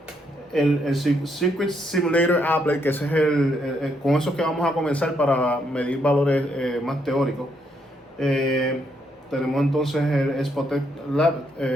el Circuit Simulator Applet, que ese es con eso que vamos a comenzar para medir valores más teóricos. Tenemos entonces el Spotec Lab,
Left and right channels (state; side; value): normal; both; correlation 0.75